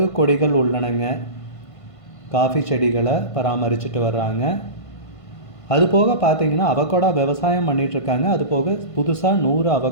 கொடிகள் உள்ளனங்க. காஃபி செடிகளை பராமரிச்சுட்டு வர்றாங்க. அதுபோக பார்த்தீங்கன்னா அவகோடா விவசாயம் பண்ணிகிட்ருக்காங்க. அதுபோக புதுசாக 100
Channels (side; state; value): right; late; 1.5 ms